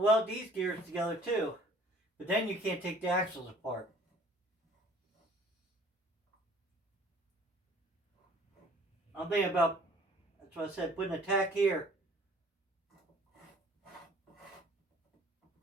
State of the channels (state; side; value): normal; both; correlation 0.53